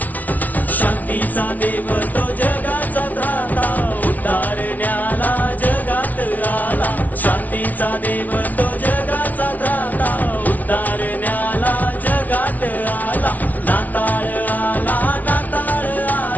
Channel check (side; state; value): right; late; 0.075 ms